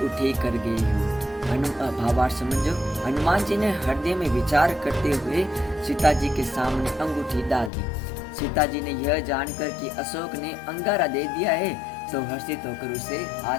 कर गई हूँ। भावार्थ समझो। हनुमान जी ने हृदय में विचार करते हुए सीता जी के सामने अंगूठी डाल दी। सीता जी ने यह जानकर कि अशोक ने अंगारा दे दिया है, तो हर्षित होकर उसे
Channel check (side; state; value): right; drops out; at 7.7 s